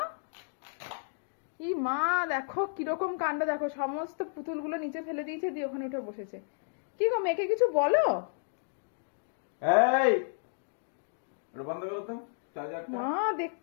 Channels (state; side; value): silent; right; digital silence